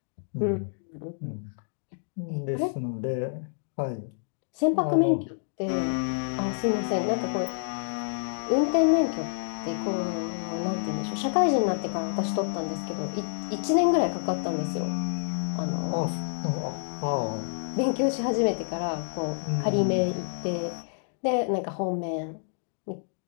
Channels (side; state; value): right; silent; digital silence